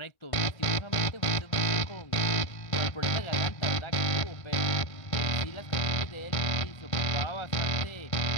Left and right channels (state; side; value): late; right; 1.5 ms